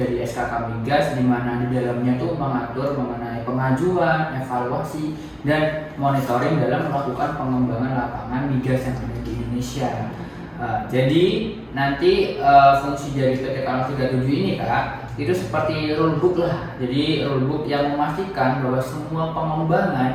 SKK Migas di mana di dalamnya tuh mengatur mengenai pengajuan, evaluasi, dan monitoring dalam melakukan pengembangan lapangan migas yang ada di Indonesia. Jadi nanti fungsi dari PTK 037 ini Kak itu seperti rulebook lah. Jadi rulebook yang memastikan bahwa semua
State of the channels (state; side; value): identical; both; correlation 1.00